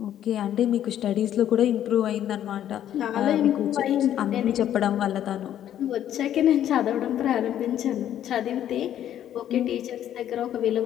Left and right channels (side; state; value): right; quieter; 11.0 dB